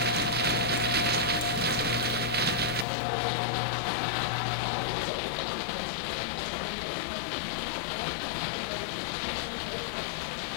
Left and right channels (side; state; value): right; drops out; at 2.9 s